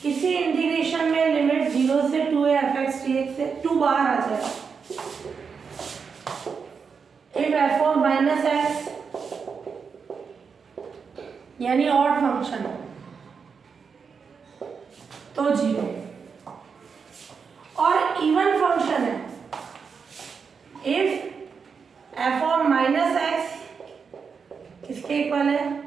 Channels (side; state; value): left; quieter; 5.8 dB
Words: किसी इंटीग्रेशन में लिमिट 0 से 2 है एफ एक्स डी एक्स से 2 बाहर आ जाएगा। If F of minus x यानी ऑड फंक्शन तो 0, और इवन फंक्शन है, if F of minus x किसके इक्वल है,